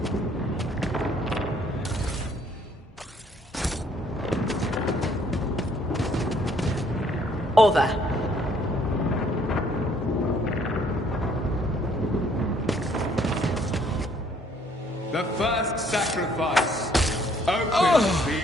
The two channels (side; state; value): both; normal; correlation 0.63